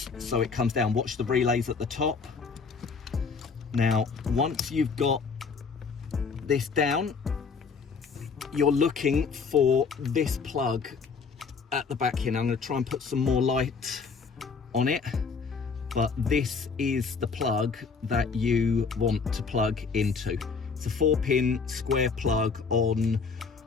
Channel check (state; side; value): quieter; right; 5.2 dB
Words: so it comes down. Watch the relays at the top. Now, once you've got this down, you're looking for this plug at the back here. Now I'm going to try and put some more light on it, but this is the plug that you want to plug into. It's a 4-pin square plug on